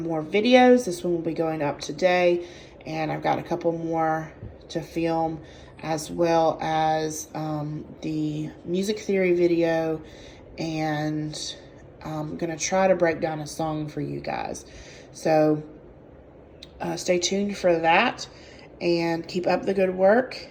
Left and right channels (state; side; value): identical; both; correlation 1.00